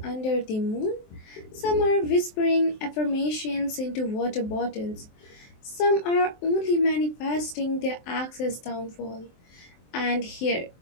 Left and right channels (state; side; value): late; right; 23 ms